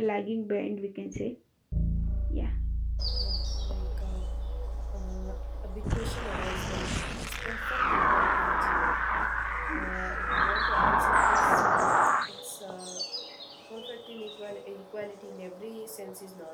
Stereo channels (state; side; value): identical; both; correlation 1.00